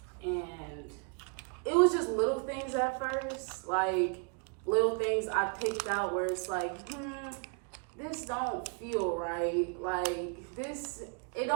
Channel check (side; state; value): left; quieter; 37.2 dB